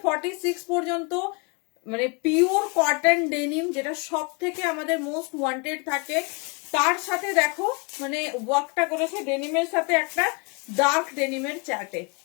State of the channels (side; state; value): right; quieter; 32.1 dB